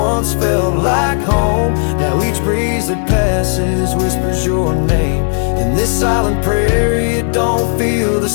felt like home. Now each breeze that passes whispers your name. In this silent prairie it don't feel the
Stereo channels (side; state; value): right; silent; 71 dB below the other